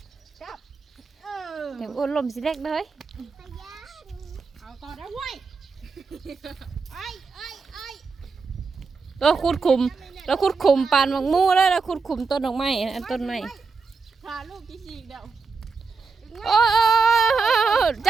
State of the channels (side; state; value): left; quieter; 4.7 dB